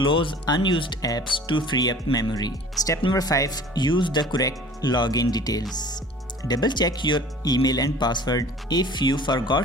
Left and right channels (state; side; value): normal; both; correlation 0.46